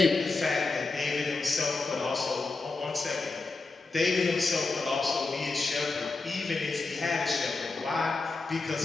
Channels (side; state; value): right; quieter; 3.7 dB